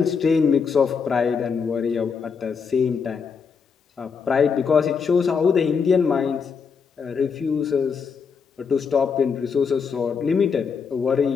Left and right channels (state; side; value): quieter; right; 5.9 dB